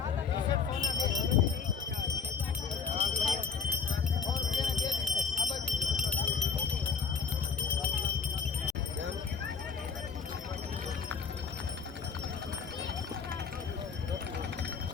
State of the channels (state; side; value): quieter; right; 5.7 dB